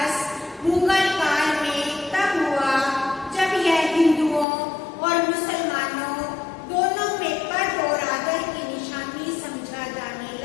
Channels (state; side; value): drops out; right; at 4.5 s